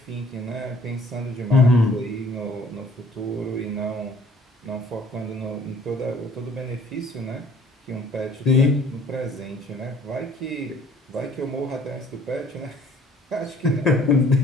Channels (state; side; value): normal; both; correlation 0.56